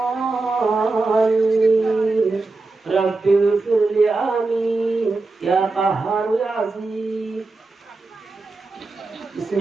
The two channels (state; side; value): quieter; left; 3.5 dB